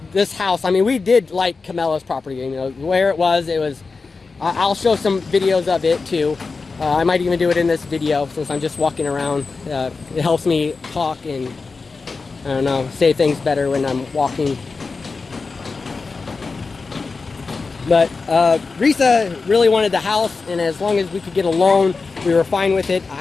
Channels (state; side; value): quieter; right; 4.3 dB